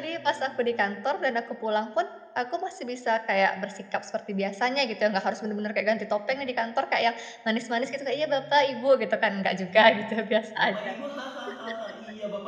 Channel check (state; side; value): identical; both; correlation 1.00